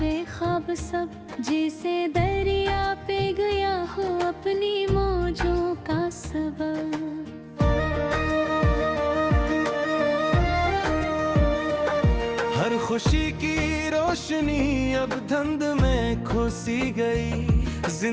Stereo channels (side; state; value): both; identical; correlation 1.00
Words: ख्वाब सब, जैसे दरिया पे गया हो अपनी मौजों का सबब। हर खुशी की रोशनी अब धुंध में खोसी गई,